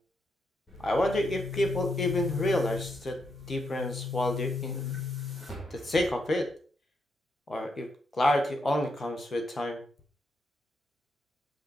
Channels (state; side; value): normal; both; correlation 0.80